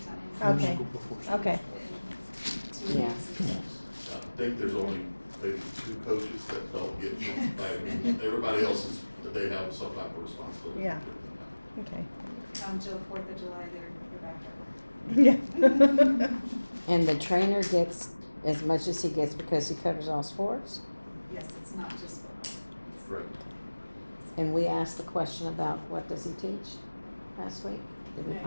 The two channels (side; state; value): both; inverted; correlation -1.00